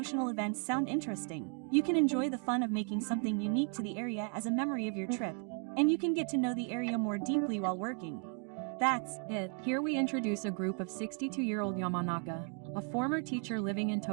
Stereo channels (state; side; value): quieter; left; 38.2 dB